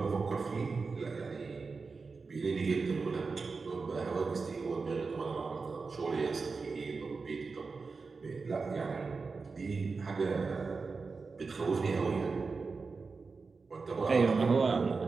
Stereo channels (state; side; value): quieter; left; 4.5 dB